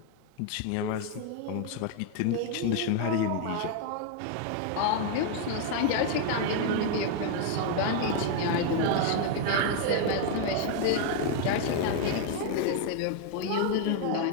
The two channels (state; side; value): different; both; correlation 0.00